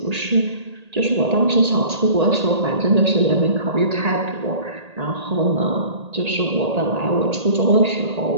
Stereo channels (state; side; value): late; left; 1.8 ms